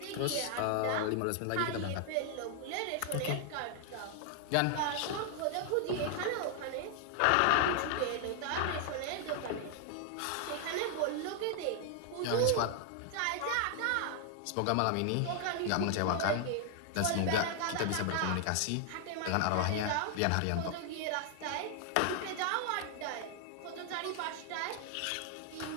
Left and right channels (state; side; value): different; both; correlation 0.00